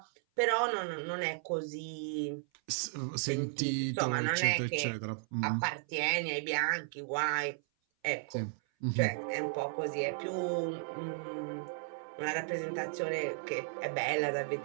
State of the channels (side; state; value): left; silent; 55 dB below the other